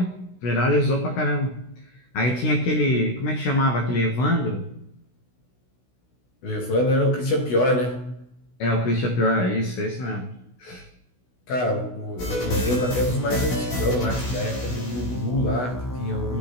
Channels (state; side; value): late; right; 16 ms